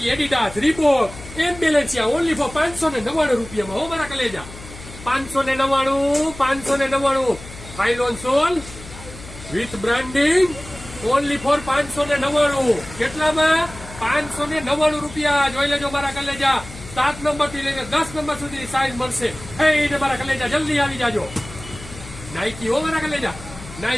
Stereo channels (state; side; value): noise; left; hum, 15 dB below the sound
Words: Adidas, Reebok, and Balenciaga only for 599 રૂપિયામાં. હો મારા કલેજા 599 phylon sole with branding only for 599. કેટલામાં? 599 રૂપિયા. જોઈ લેજો મારા કલેજા. 7 નંબર થી લઈને 10 નંબર સુધી સાઈઝ મળશે. ને મારા કલેજા જલ્દી આવી જાજો. નાઇકી હો મારા કલેજા,